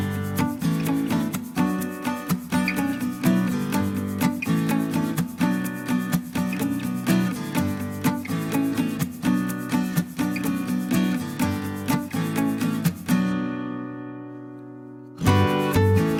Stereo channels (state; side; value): identical; both; correlation 1.00